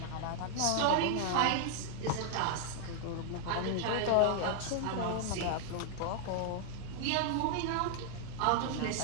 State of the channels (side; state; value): both; different; correlation 0.00